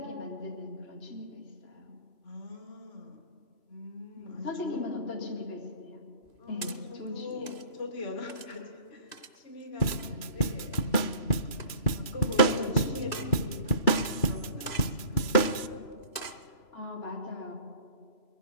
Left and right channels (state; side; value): late; right; 3.0 ms